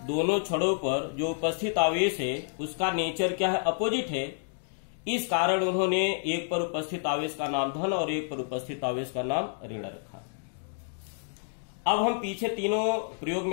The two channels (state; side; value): silent; right; digital silence